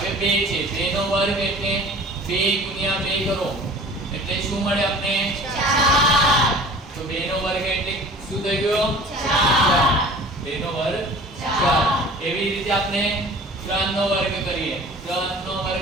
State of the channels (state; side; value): normal; both; correlation 0.45